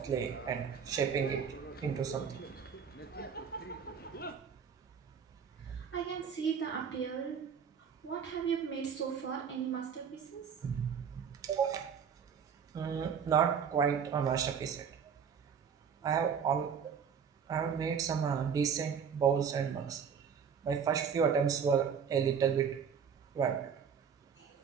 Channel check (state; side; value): quieter; left; 7.0 dB